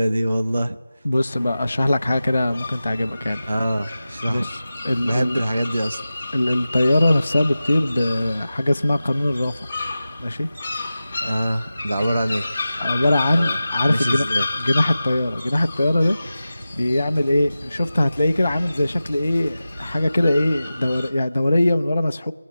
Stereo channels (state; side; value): inverted; both; correlation -0.95